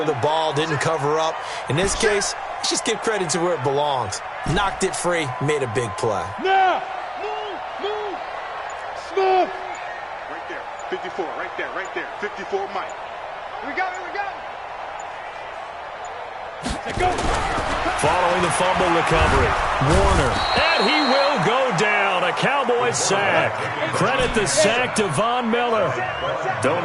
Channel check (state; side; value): identical; both; correlation 1.00